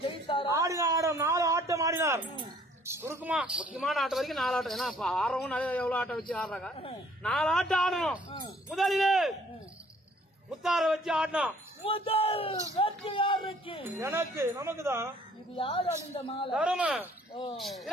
ஆடினார். 4 ஆட்டம் ஆடினார். சுருக்குமா முக்கியமான ஆட்டம் வரைக்கும் 4 ஆட்டம். ஏன்னா ஆறவும் நிறைய எவ்வளவு ஆட்டம் வச்சு ஆடுறாங்க. 4 ஆட்டம் ஆடணும். முதலிலே முத்தார வச்சு ஆடணும். முதல் வெற்றி யாருக்கு? எனக்கு, நமக்கு தான். இது யார் அணிந்த மாலை? தரும.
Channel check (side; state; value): both; normal; correlation 0.59